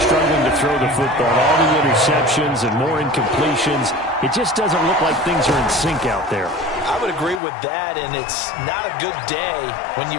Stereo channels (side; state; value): right; drops out; at 7.4 s